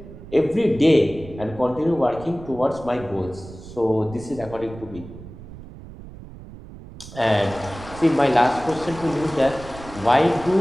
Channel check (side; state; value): right; noise; rumble, 16 dB below the sound